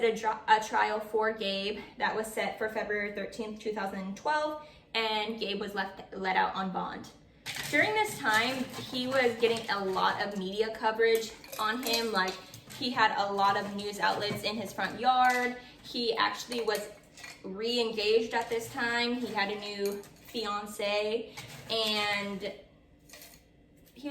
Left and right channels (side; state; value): both; identical; correlation 1.00